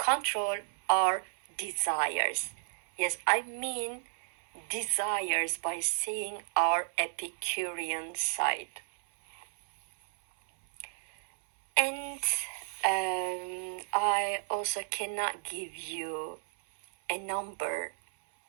our desires. Yes, I mean desires by saying our Epicurean side. And I also cannot give you a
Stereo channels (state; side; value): silent; left; 56 dB below the other